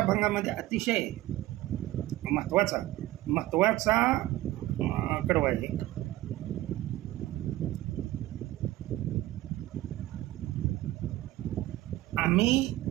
अतिशय महत्वाचा कडवा आहे. आम्ही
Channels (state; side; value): quieter; left; 16.2 dB